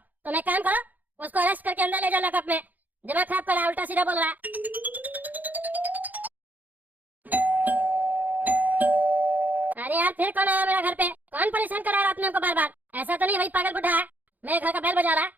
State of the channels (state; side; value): late; left; 0.082 ms